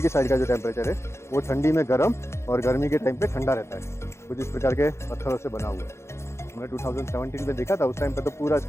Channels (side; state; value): right; late; 0.13 ms